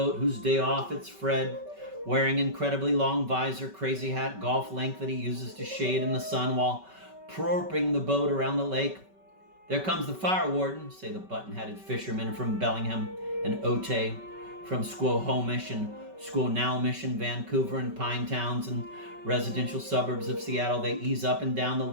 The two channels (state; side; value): late; left; 5.2 ms